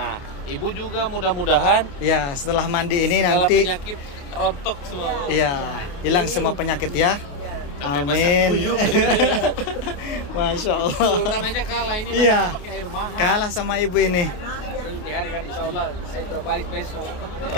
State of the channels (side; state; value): right; late; 28 ms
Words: ibu juga mudah-mudahan Ya, setelah mandi ini segala nanti penyakit rontok semua. iya, hilang semua penyakit ya. Amin. Masya Allah. Sultan aja kalah ini. Iya. Pakai air mahal. Kalah sama ibu ini. Hari-hari insya Allah saya mau balik besok.